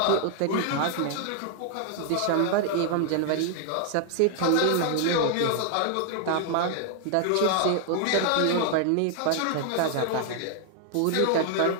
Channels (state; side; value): different; both; correlation 0.00